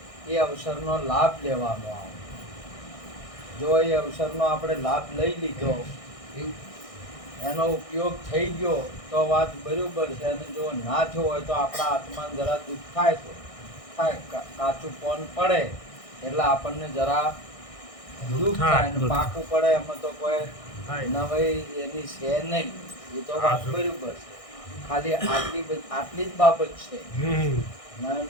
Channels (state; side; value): late; right; 1.6 ms